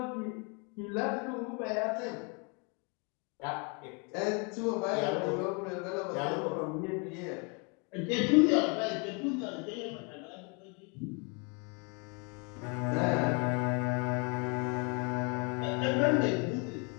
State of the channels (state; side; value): quieter; right; 33.7 dB